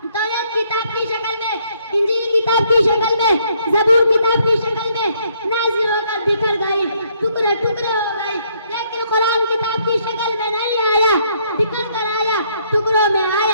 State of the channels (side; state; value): both; inverted; correlation -0.69